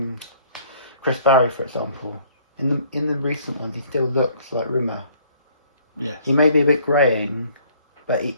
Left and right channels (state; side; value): inverted; both; correlation -0.59